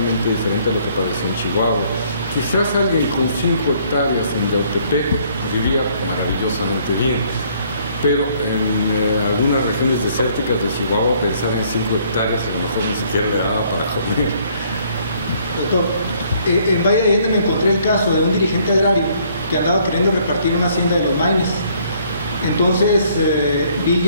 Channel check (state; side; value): inverted; both; correlation -0.63